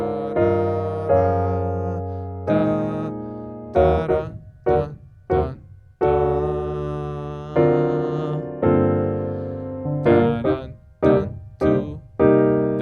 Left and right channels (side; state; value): both; identical; correlation 1.00